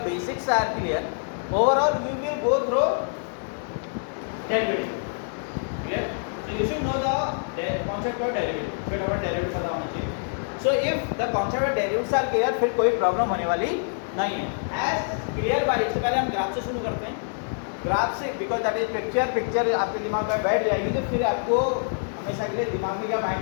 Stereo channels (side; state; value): right; silent; digital silence